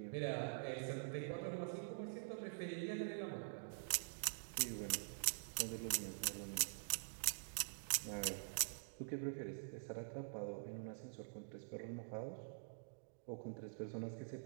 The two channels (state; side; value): silent; left; digital silence